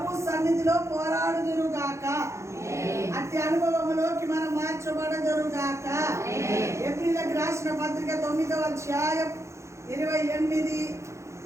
సన్నిధిలో పోరాడుదురుగాక. అట్టి అనుభవంలోకి మనం మార్చబడదురుగాక. ఏప్రిల్కి రాసిన పత్రిక 9వ అధ్యాయం 28.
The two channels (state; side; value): late; left; 0.14 ms